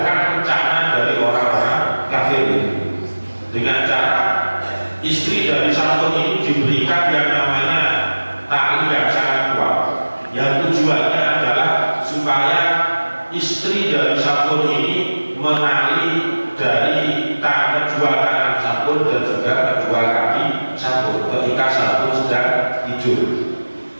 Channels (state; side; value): inverted; both; correlation -1.00